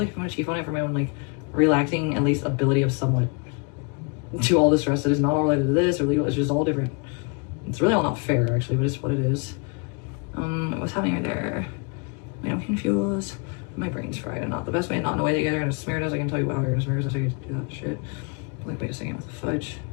I want to chief on it for my own like relaxing, at least ability of somewhat to all the stress that is not all related to this or legal. It's just all different. It's really all not fair, actually, but it's what it is. What's happening right there? Wait, I'm confused. My brain's fried, and not the best way, not in a way that you're gonna smear it as I can tell you how you're gonna smear it as I can do that shit. Like, wait a second with the fudge.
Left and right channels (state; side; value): quieter; right; 33.8 dB